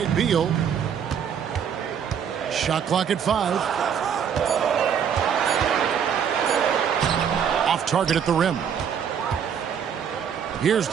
Beal. Shot clock at 5. Off target at the rim. Here's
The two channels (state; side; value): quieter; left; 7.9 dB